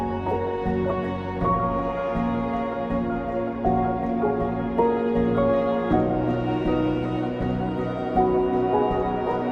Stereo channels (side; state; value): both; identical; correlation 1.00